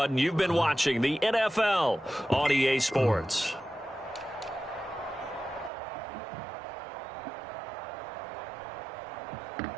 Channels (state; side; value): drops out; left; at 5.7 s